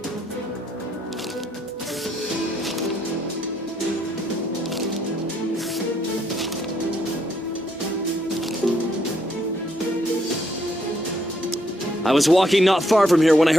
I was walking not far from here when I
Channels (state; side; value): normal; both; correlation 0.72